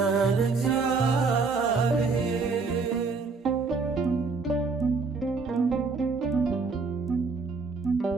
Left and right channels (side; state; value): left; quieter; 4.4 dB